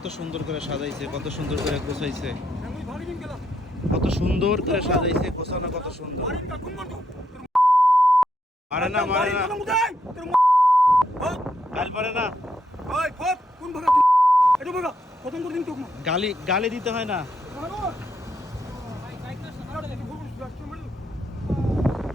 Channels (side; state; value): both; normal; correlation 0.78